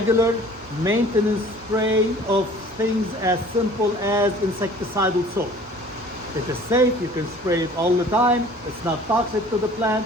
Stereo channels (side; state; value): both; normal; correlation 0.49